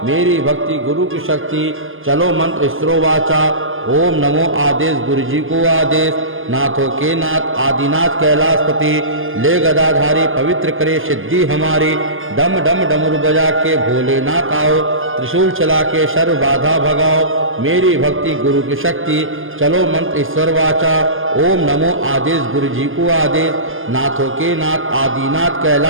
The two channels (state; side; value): late; left; 0.59 ms